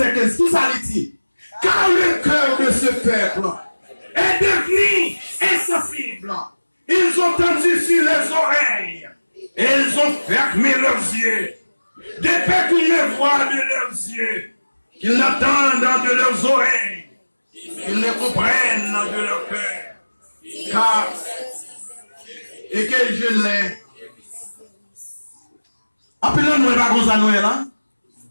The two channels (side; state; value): both; inverted; correlation -1.00